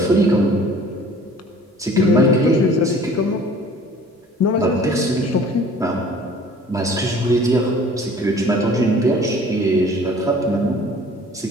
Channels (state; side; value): normal; both; correlation 0.50